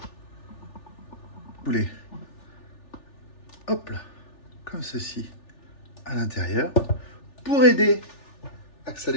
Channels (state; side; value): late; right; 3.4 ms